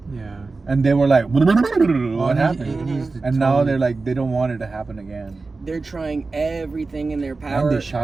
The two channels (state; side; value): quieter; left; 3.8 dB